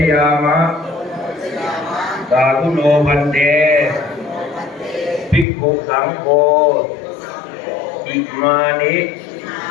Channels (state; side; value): drops out; right; at 5.5 s